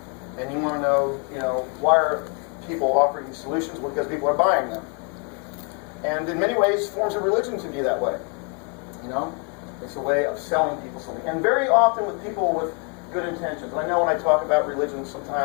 and you want to know, why are people offering these solutions? Well, because people are buying them. And in many ways, forms of religion can be that way. It's a way of selling people something. And very often with people good intentions. And I know when I talk about religion,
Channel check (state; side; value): quieter; right; 37.2 dB